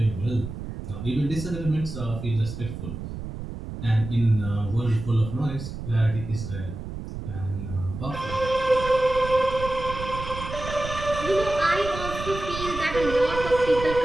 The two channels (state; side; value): noise; right; rumble, 8 dB below the sound